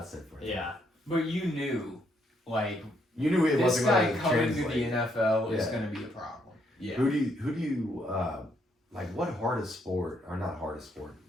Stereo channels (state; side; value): normal; both; correlation 0.73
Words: for him. Yeah, but you knew, like, it this wasn't guy coming to translate. the NFL is going to be a problem. Yeah. Who do you like? What hardest sport, or not hardest sport?